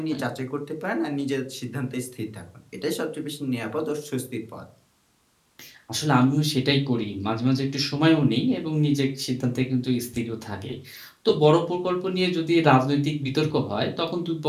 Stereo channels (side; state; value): both; identical; correlation 1.00